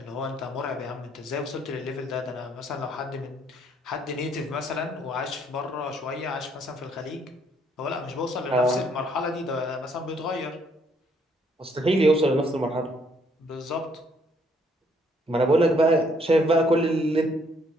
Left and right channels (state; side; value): normal; both; correlation 0.67